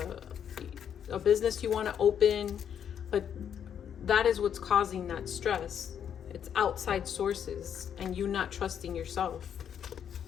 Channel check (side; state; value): right; quieter; 8.6 dB